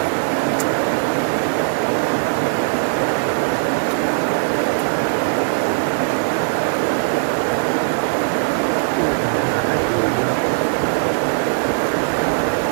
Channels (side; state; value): left; silent; digital silence